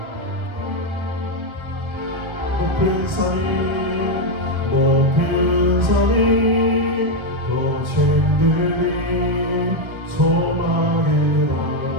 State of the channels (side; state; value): left; late; 1.3 ms